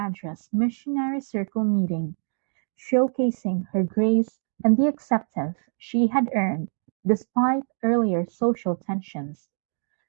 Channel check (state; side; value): silent; left; digital silence